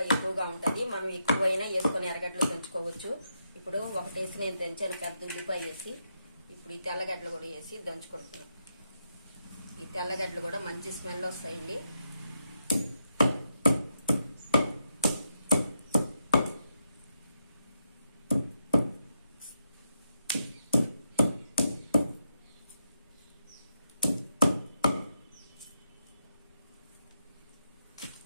ఎక్కువగా ఉంటుంది. మనం ఎక్కువైనా వేసుకొని ఎర్రగడ్డలు దంచుకోవచ్చు. ఇప్పుడు ఒకటేసి నేను దంచాను, పెద్ద ఉల్లిపాయ వేసి. ఇప్పుడు ఈ తెల్లగడ్డలు కూడా వేసి దంచుకుంటున్నాను. ఈ తెల్లగడ్డలు కూడా మంచి స్మెల్ వస్తాయండి.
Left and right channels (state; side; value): inverted; both; correlation -0.83